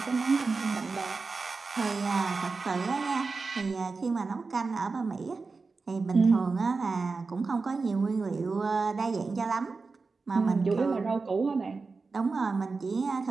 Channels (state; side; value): quieter; left; 4.2 dB